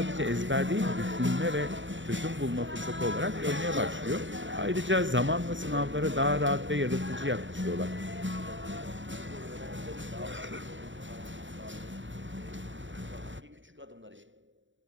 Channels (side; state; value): left; late; 0.55 ms